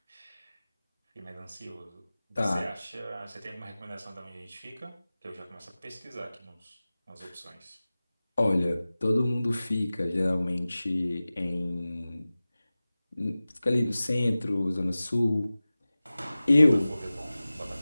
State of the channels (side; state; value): both; inverted; correlation -0.97